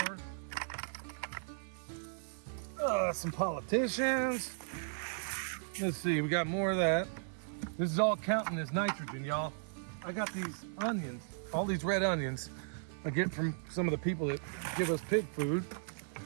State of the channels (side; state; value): left; silent; 54 dB below the other